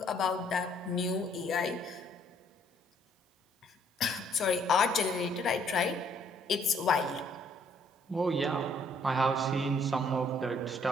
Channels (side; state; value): both; normal; correlation 0.64